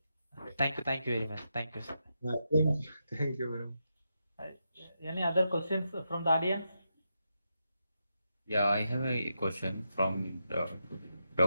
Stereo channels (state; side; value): inverted; both; correlation -0.85